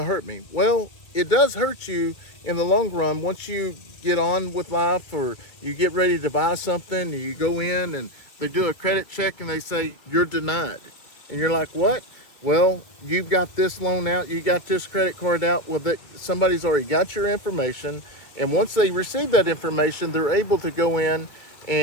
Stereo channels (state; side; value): late; right; 1.9 ms